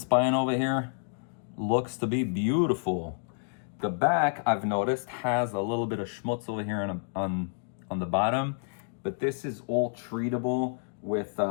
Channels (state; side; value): silent; right; digital silence